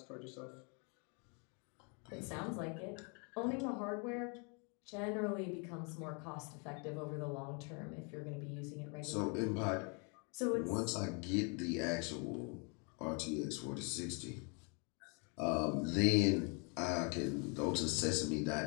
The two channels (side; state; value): right; quieter; 35.3 dB